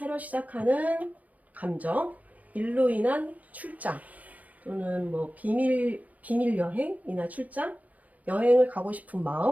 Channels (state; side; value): late; left; 0.071 ms